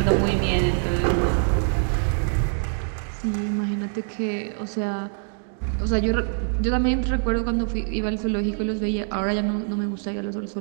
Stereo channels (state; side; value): silent; left; 56 dB below the other